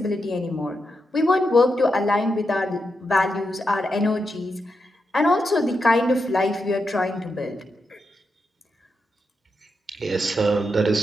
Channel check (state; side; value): normal; both; correlation 0.86